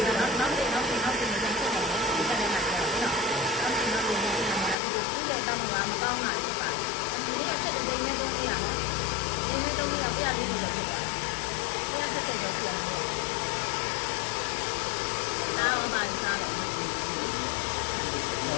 နော်နောက်ပြန်ပြန်ဆက်တယ်နော်ဒီကနေ့မှပြောနော်နောက်ပြန်ပြန်သူ့ရဲ့တောင်းတာမကောင်းတာဖြစ်ပါဒီနေ့ဆက်တဲ့နေသုံးရနော်နေနဲ့သုံးရပြရလေးလို့ဖြစ်သွားတယ်ဆက်တဲ့ရောပြန်တယ်နားအောင်ပါစားတယ်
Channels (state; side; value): drops out; right; at 4.8 s